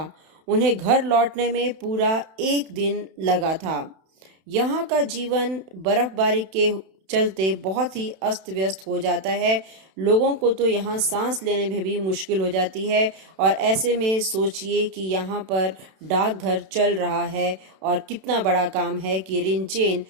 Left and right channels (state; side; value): late; left; 31 ms